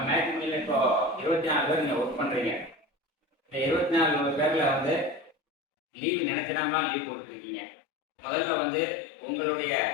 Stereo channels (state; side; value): drops out; right; at 5.4 s